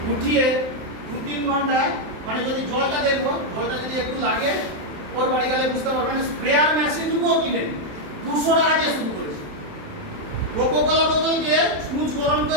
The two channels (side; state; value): left; late; 27 ms